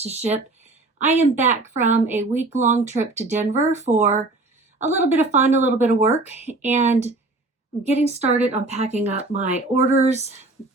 to ship. I am back from a week-long trip to Denver for a little bit of fun, a little bit of work, and I'm getting started on packing up my orders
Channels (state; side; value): quieter; left; 3.1 dB